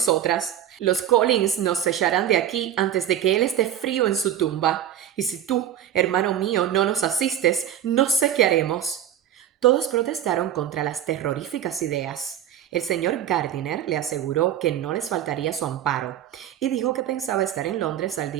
Los Collins nos echarán de aquí antes de que él esté frío en su tumba, y si tú, hermano mío, no nos asistes, no sé qué haremos. Todos protestaron contra las terroríficas ideas. El señor Gardiner le aseguró que no les faltaría su amparo, y dijo que pensaba estar en Londres al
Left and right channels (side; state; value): left; quieter; 10.6 dB